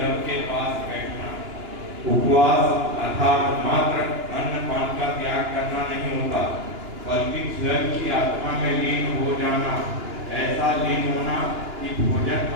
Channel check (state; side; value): late; left; 2.9 ms